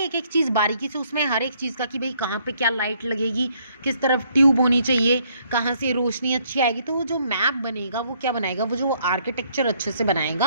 एक चीज़ बारीकी से उसमें हर एक चीज़ का कि भाई कहाँ पे क्या लाइट लगेगी, किस तरफ ट्यूब होनी चाहिए, कहाँ से रोशनी अच्छी आएगी। तो वो जो मैप बनेगा वो क्या बनाएगा, वो जो आर्किटेक्चर अच्छे से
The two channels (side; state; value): both; inverted; correlation -0.68